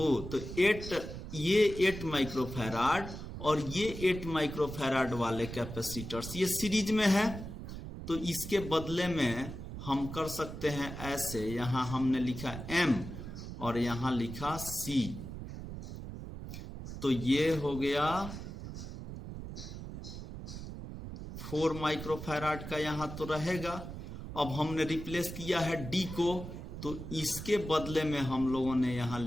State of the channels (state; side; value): noise; right; rumble, 9 dB below the sound